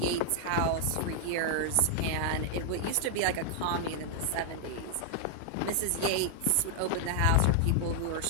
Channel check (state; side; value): different; both; correlation 0.00